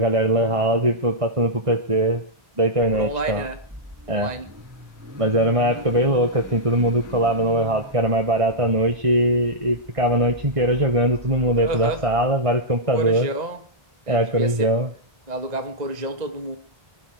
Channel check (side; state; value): left; late; 1.9 ms